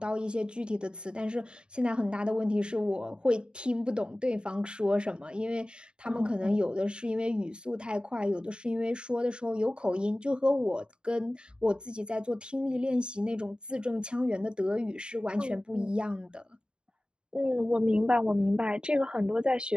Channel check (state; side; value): late; left; 0.051 ms